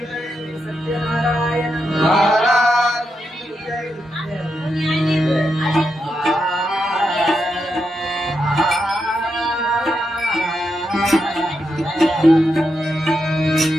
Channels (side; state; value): both; normal; correlation 0.84